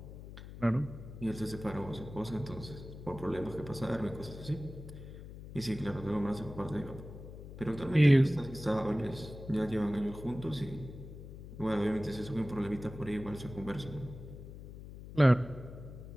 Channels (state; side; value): noise; left; hum, 13 dB below the sound